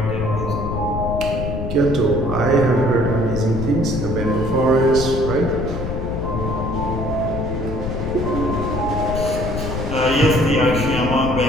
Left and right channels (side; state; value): left; noise; rumble, 4 dB below the sound